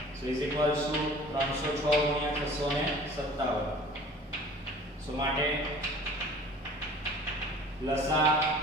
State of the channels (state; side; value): normal; both; correlation 0.46